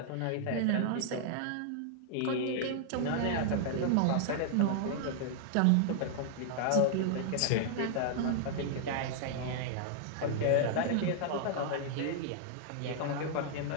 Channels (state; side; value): different; both; correlation -0.01